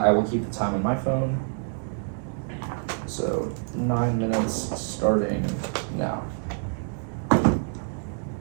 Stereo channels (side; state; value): left; silent; digital silence